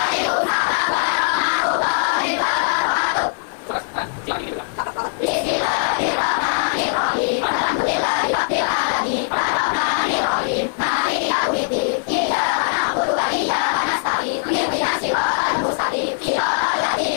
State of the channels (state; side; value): silent; right; digital silence